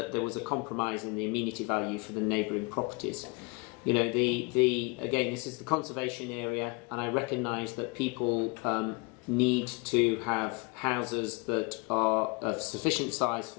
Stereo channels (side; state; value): right; quieter; 28.7 dB